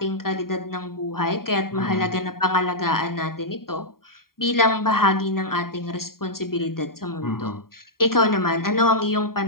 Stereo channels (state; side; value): late; right; 0.93 ms